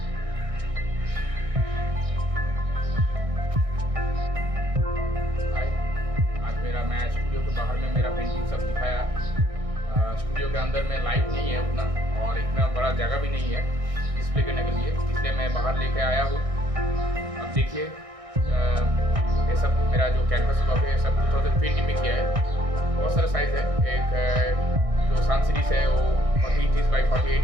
स्टूडियो के बाहर में मेरा पेंटिंग सब दिखाया। स्टूडियो के अंदर में लाइट नहीं है उतना और इतना बड़ा जगह भी नहीं है डिस्प्ले करने के लिए, इसलिए मैं बाहर लेके आया हूँ। अब देखिए ये सब मेरा जो कैनवस ब्लॉक है सब 2020 में किया है। बहुत सारा साइज़ है। एक जो सन सीरीज़ है वो 40 इंचज़ बाई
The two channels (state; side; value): late; left; 1.6 ms